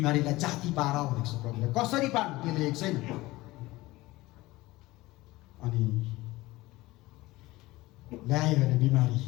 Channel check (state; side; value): quieter; right; 19.3 dB